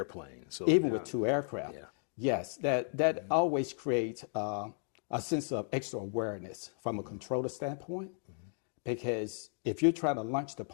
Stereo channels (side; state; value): right; silent; 55 dB below the other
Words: So, Even with two aircraft. Yeah. Yes, that always creates a sense of extra awareness from a controller standpoint, because if you're trying to launch